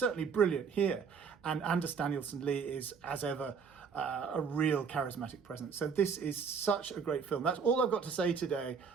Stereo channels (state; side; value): quieter; left; 6.0 dB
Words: brilliant here, and Anders Danielsen Lee is, as ever, a real charismatic presence. So this is such a great film. That's all I've got to say today.